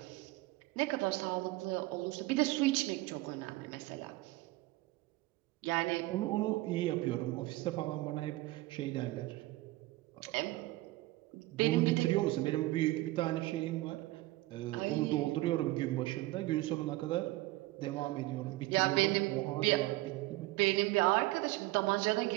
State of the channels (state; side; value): quieter; left; 19.1 dB